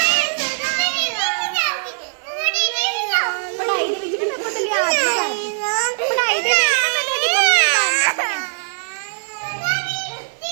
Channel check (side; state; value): left; silent; 56 dB below the other